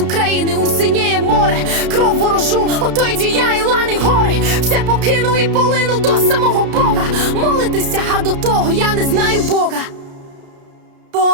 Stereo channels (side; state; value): left; late; 33 ms